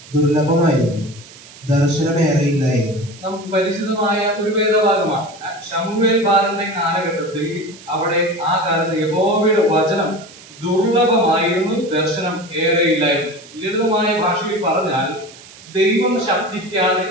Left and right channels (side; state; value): right; noise; hiss, 20 dB below the sound